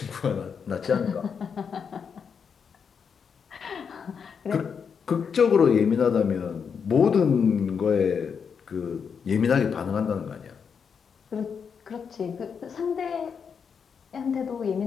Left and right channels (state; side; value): quieter; right; 6.5 dB